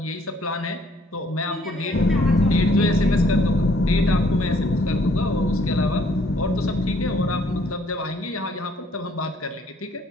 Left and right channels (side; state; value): both; normal; correlation 0.64